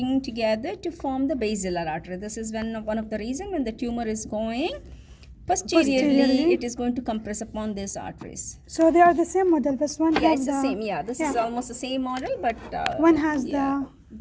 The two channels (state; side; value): identical; both; correlation 1.00